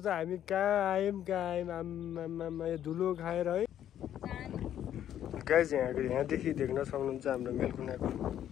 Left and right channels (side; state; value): right; quieter; 10.8 dB